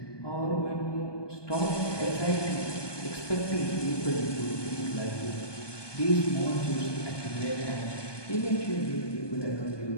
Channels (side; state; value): right; late; 1.2 ms